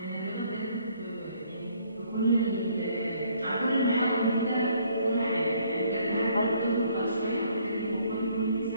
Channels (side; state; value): both; inverted; correlation -0.65